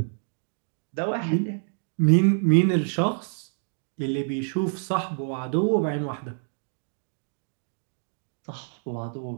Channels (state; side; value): silent; left; digital silence